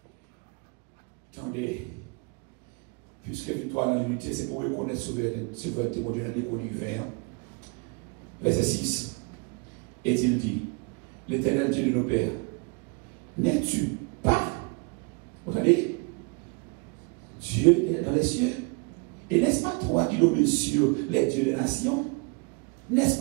attendez, puisque victoire dans l'unité, c'est pour reconnaître souveraineté, mon Dieu, dans l'univers. Verset 6. Et il dit, l'Éternel Dieu de nos pères, n'es-tu pas, vous entendez, Dieu dans les cieux? Et n'est-ce pas toi qui domines sur les dieux des nations? N'est-ce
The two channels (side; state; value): left; quieter; 31.0 dB